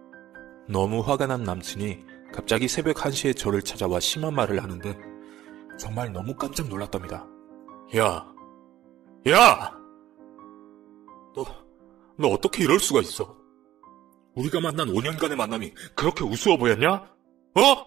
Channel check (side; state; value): left; quieter; 13.4 dB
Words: 너무 화가 난 남친이 갑자기 새벽 1시에 저를 찾아와 심한 말을 하는데 정말 너무 깜짝 놀랐답니다. 야! 너 어떻게 이럴 수가 있어? 우리가 만난 5년간의 만남이 그렇게 우스워 보였냐?